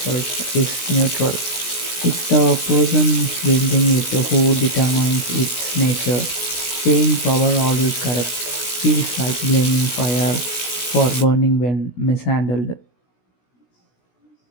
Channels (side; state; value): right; late; 16 ms